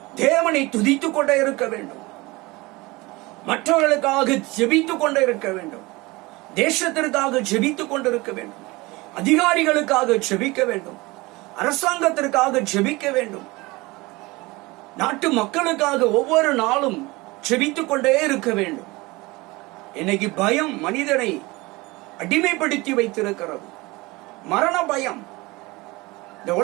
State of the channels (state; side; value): quieter; left; 22.6 dB